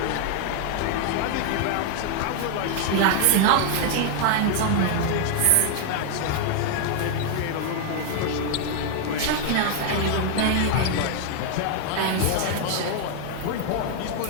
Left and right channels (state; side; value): different; both; correlation 0.00